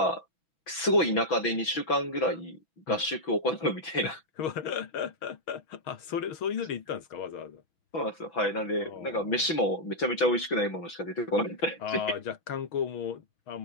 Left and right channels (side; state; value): right; late; 6.0 ms